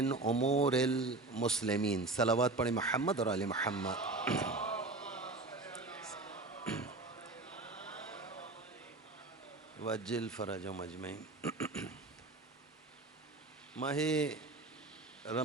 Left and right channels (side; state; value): left; quieter; 3.3 dB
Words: उमूरिल मुस्लिमीन। सलावत पढ़े मोहम्मद और आले मोहम्मद। वज्जिल फ़रजहुम अजमईन। माहे